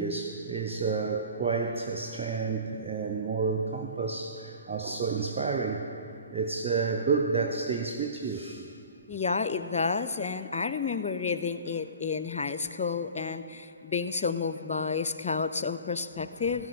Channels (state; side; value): inverted; both; correlation -0.39